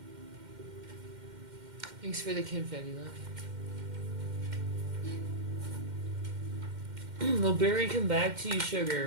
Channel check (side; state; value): left; late; 2.1 ms